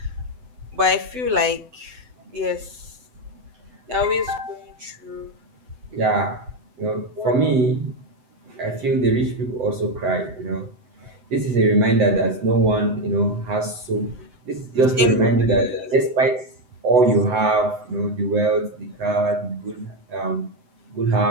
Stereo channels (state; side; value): late; left; 7.9 ms